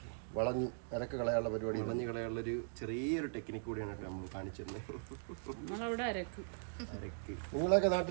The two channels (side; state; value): left; silent; digital silence